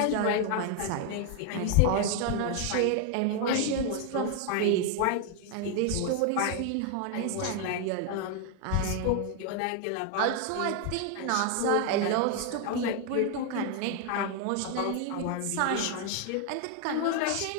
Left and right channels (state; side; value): different; both; correlation 0.00